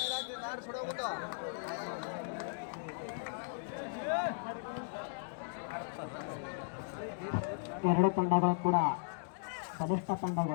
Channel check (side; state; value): right; silent; digital silence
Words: ಎರಡು ತಂಡಗಳು ಕೂಡ ಬಲಿಷ್ಠ